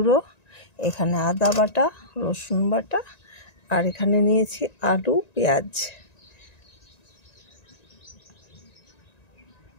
এখানে আদা বাটা, রসুন বাটা, আর এখানে নিয়েছি আলু, পেঁয়াজ।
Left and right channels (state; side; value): late; right; 1.9 ms